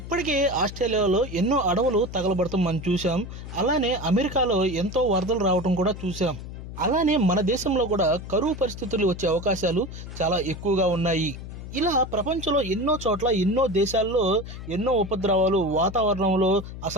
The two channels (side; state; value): left; noise; hum, 11 dB below the sound